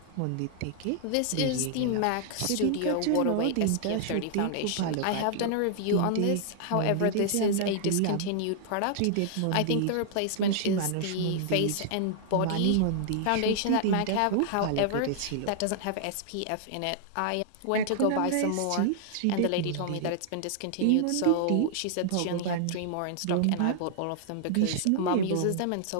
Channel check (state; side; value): different; both; correlation -0.01